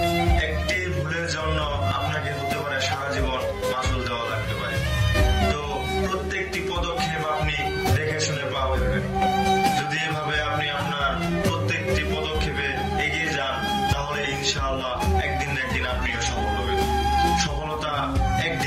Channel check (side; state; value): both; identical; correlation 1.00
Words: একটি ভুলের জন্য আপনাকে হতে পারে সারা জীবন মাসুল দেওয়া লাগতে পারে। তো প্রত্যেকটি পদক্ষেপ আপনি দেখে শুনে পা ফেলবেন। যদি এভাবে আপনি আপনার প্রত্যেকটি পদক্ষেপে এগিয়ে যান, তাহলে ইনশাআল্লাহ একদিন না একদিন আপনিও সফল হবেন। সফলতা